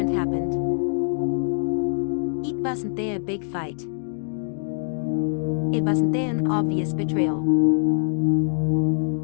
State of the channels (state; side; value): silent; right; digital silence